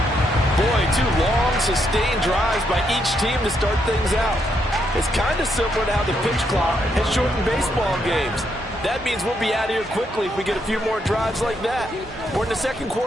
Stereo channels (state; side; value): normal; both; correlation 0.77